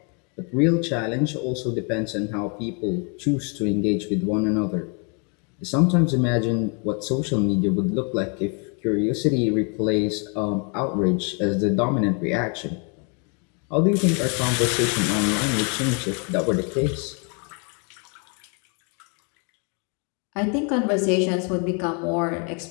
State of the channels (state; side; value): quieter; right; 36.8 dB